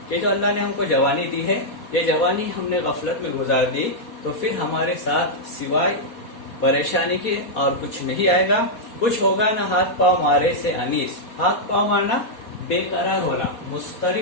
کہ جو اللہ نے ہم کو جوانی دی ہے, یہ جوانی ہم نے غفلت میں گزار دی, تو پھر ہمارے ساتھ سوائے پریشانی کے اور کچھ نہیں آئے گا. کچھ ہوگا نہ ہاتھ پاؤں مارے سے انیس. ہاتھ پاؤں مارنا, بے قرار ہونا,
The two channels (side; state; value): right; late; 4.2 ms